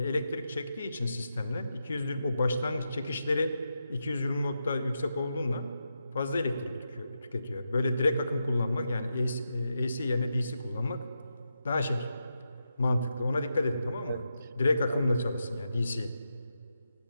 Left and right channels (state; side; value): inverted; both; correlation -0.87